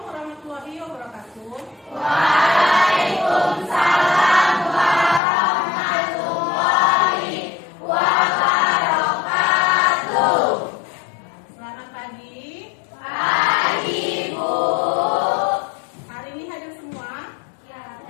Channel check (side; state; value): right; drops out; at 5.2 s